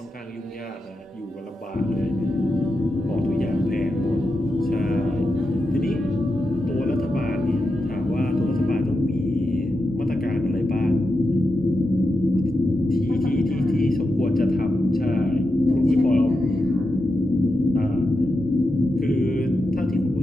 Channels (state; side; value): normal; both; correlation 0.88